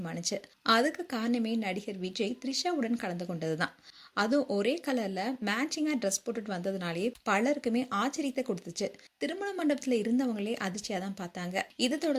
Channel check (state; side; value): identical; both; correlation 1.00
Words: அதுக்கு காரணமே நடிகர் விஜய் த்ரிஷாவுடன் கலந்து கொண்டதுதான். அதுவும் ஒரே கலர்ல மேட்சிங்கா ட்ரெஸ் போட்டுட்டு வந்ததுனாலே பலருக்குமே ஆச்சரியத்தை கொடுத்துச்சு. திருமண மண்டபத்துல இருந்தவங்களே அதிர்ச்சியா தான் பார்த்தாங்க. இதை